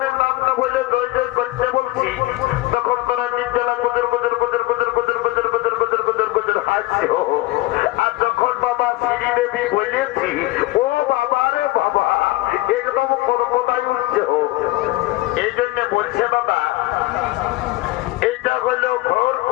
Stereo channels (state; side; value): quieter; right; 19.0 dB